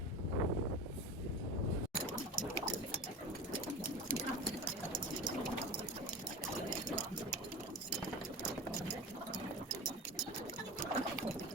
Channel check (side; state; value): both; normal; correlation 0.30